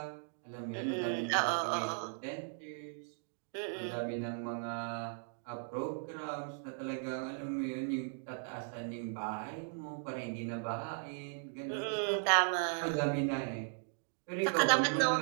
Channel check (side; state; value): left; silent; digital silence